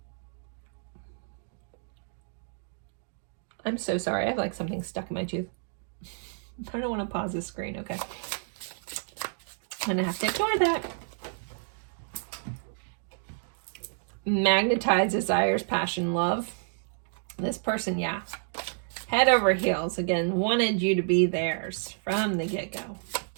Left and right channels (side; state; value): left; silent; digital silence